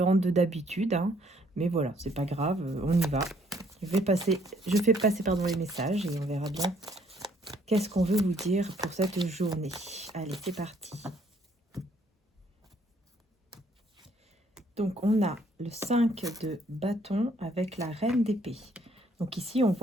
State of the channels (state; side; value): normal; both; correlation 0.65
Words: de d'habitude, hein. Mais voilà, c'est pas grave, on y va. Je fais passer pardon, les messages et on verra bien qu'est-ce qu'on veut vous dire pour cette journée. Allez, c'est parti. Donc, on a le 5 de bâton avec la reine d'épée. Donc ici, on